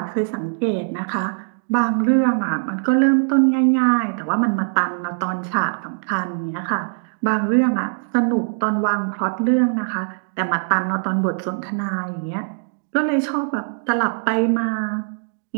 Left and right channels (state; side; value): silent; left; digital silence